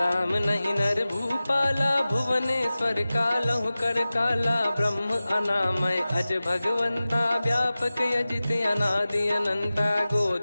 नहीं नर भूपाला भुवनेश्वर कालहु कर काला। ब्रह्म अनामय अज भगवंता व्यापक यजित अनादि अनंता।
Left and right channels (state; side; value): inverted; both; correlation -0.96